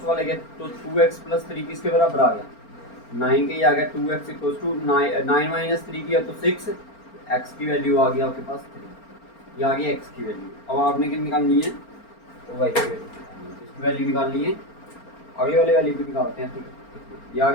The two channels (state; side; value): late; right; 4.4 ms